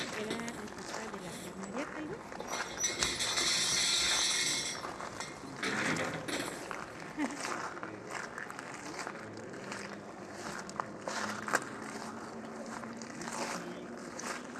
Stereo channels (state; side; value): identical; both; correlation 1.00